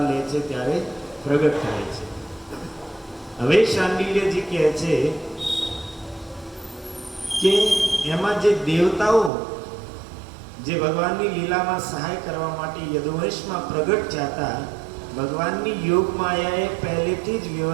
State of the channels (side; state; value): left; drops out; at 9.3 s